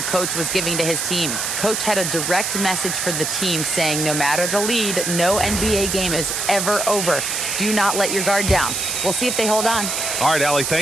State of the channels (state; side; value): noise; right; hiss, 1 dB below the sound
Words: coach was giving to his team. Coach had a direct message for the team saying no matter the lead, no NBA game is ever over. Do not let your guard down. We'll see if they hold on. All right, Allie,